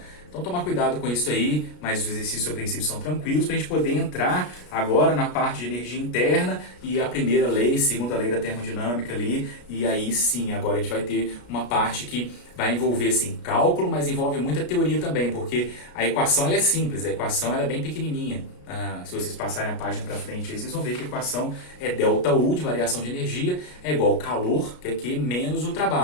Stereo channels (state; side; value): late; right; 33 ms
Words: Então, tomar cuidado com isso aí, mas os exercícios a princípio são tranquilos para a gente poder entrar agora na parte de energia interna e a primeira lei, segunda lei da termodinâmica ali, e aí sim, agora a gente vai ter uma parte que vai envolver sim cálculo, mas envolve muita teoria também, porque a equação ela é simples, a equação ela é bem pequenininha. Se vocês passarem a página para frente, aí vocês vão ver que a equação é ΔU de variação de energia é igual ao calor, que é Q menos o